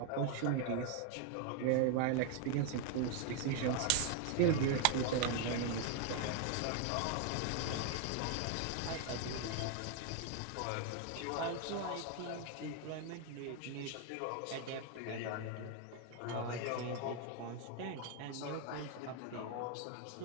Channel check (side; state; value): both; different; correlation 0.00